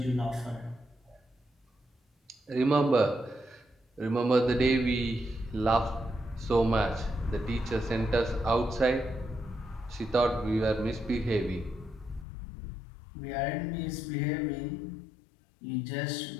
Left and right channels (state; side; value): drops out; right; at 12.2 s